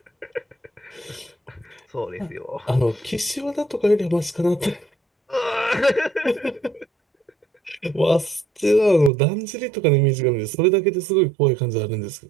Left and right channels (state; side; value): drops out; left; at 9.1 s